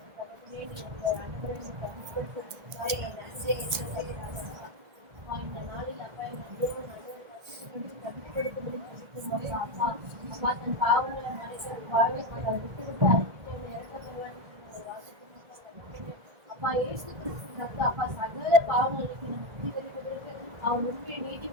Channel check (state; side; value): late; left; 1.6 ms